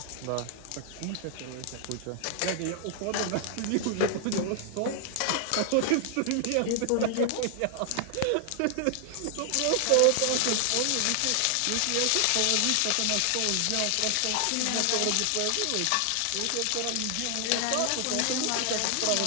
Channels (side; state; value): both; different; correlation 0.00